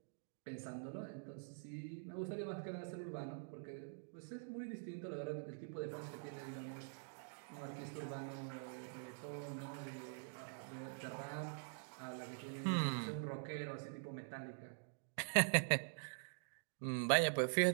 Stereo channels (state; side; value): silent; left; digital silence